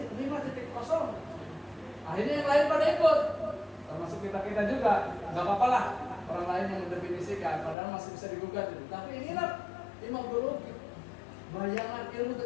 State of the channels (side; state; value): right; drops out; at 7.8 s